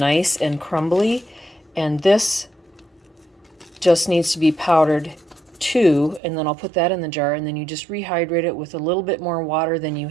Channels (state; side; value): drops out; left; at 6.2 s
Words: and crumbly, and this just needs to be powdered too, and then I'll put that in the jar, and then you just rehydrate it with a little bit more water than you